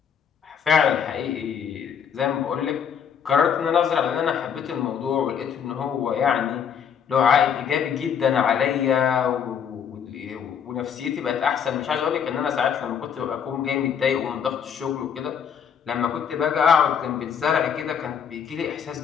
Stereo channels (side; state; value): right; quieter; 7.7 dB